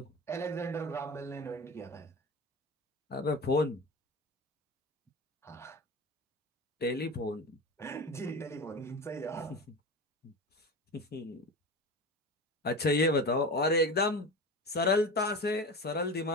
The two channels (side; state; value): both; normal; correlation 0.29